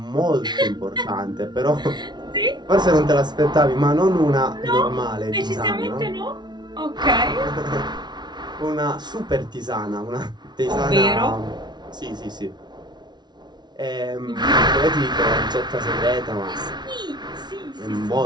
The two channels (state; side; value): late; left; 0.20 ms